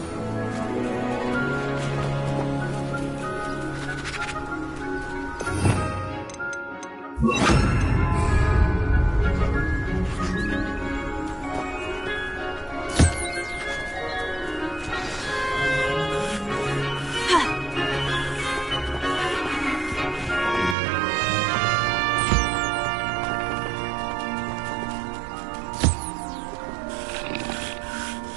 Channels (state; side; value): drops out; left; at 20.8 s